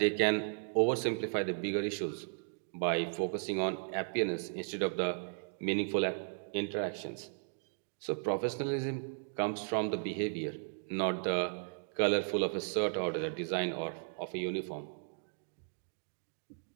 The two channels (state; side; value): silent; left; digital silence